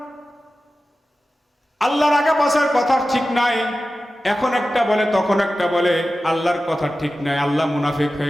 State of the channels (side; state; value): both; normal; correlation 0.94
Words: আল্লাহর আগা পাছার কথা ঠিক নাই, এখন একটা বলে তখন একটা বলে, আল্লাহর কথা ঠিক নাই, আল্লাহ মুনাফিক